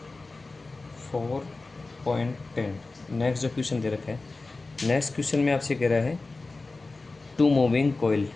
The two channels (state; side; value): quieter; right; 3.5 dB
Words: नेक्स्ट जो क्वेश्चन दे रखा है, नेक्स्ट क्वेश्चन में आपसे कह रहा है two moving coil